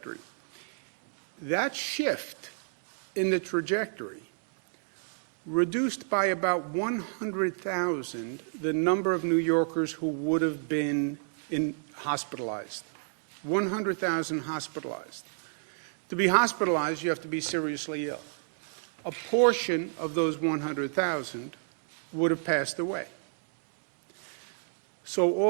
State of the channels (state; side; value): silent; left; digital silence